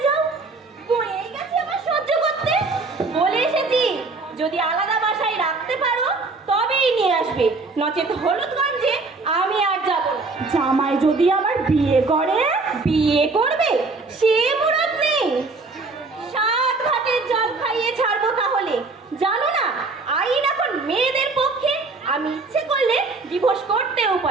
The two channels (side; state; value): left; quieter; 3.7 dB